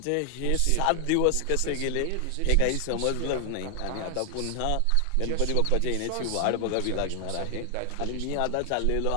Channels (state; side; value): different; both; correlation 0.00